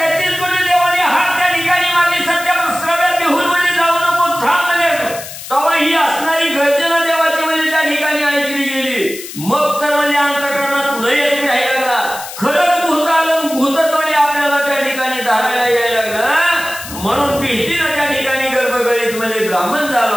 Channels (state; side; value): noise; left; hiss, 11 dB below the sound